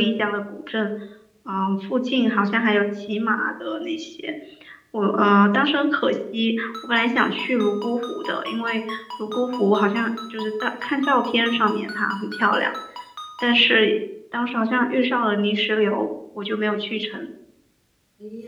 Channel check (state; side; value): identical; both; correlation 1.00